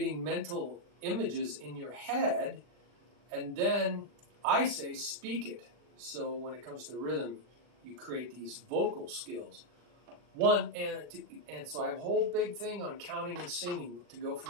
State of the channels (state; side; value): late; left; 40 ms